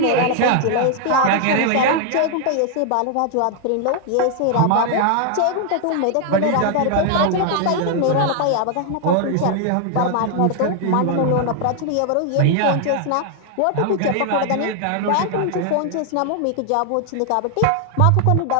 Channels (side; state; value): both; different; correlation 0.00